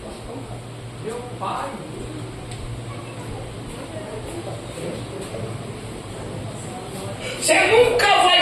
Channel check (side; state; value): both; identical; correlation 1.00